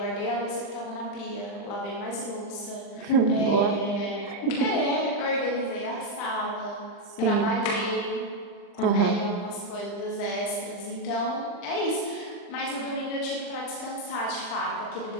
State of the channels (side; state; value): right; late; 40 ms